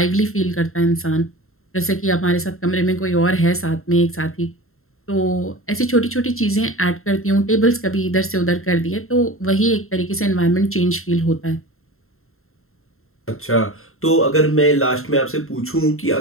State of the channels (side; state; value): right; late; 0.62 ms